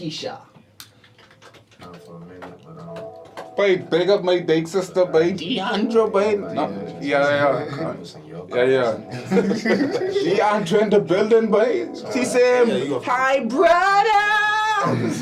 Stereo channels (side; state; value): both; identical; correlation 1.00